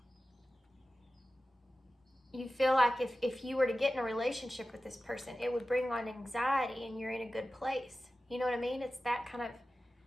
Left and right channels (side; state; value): both; normal; correlation 0.94